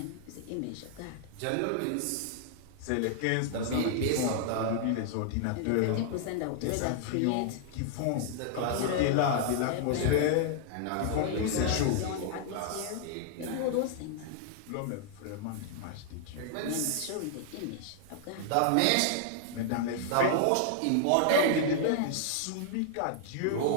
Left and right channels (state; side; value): different; both; correlation -0.01